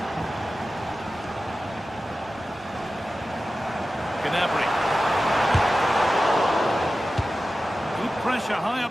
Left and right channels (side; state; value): both; normal; correlation 0.94